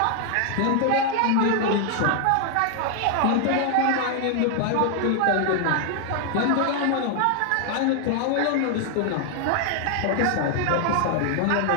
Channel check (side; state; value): both; different; correlation 0.00